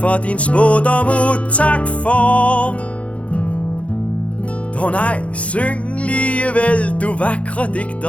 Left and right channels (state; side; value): late; right; 0.064 ms